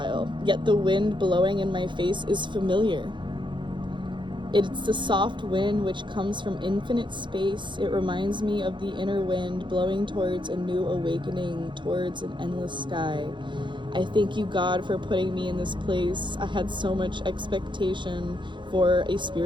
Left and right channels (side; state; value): left; late; 0.23 ms